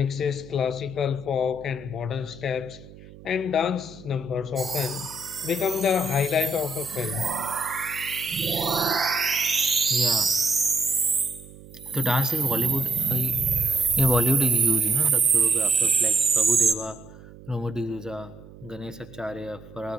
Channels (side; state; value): right; noise; hum, 19 dB below the sound